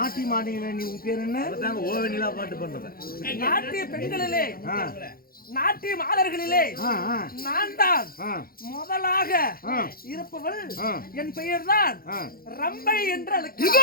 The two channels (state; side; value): late; right; 0.43 ms